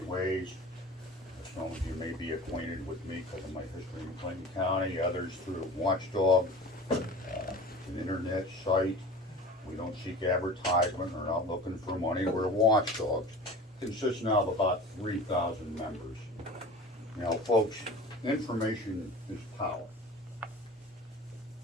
ways. Some of you may be acquainted with me because of my history in Clinton County, others through Watchdog, an internet site. We don't seek advertisement, we're not looking for money, we're watchdogs. Consists now of about 3,000 members. Now, folks, information is power.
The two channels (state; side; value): normal; both; correlation 0.38